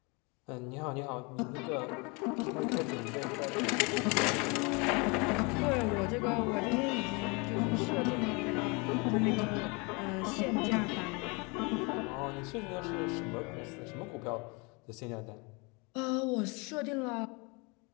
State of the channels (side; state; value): right; quieter; 29.5 dB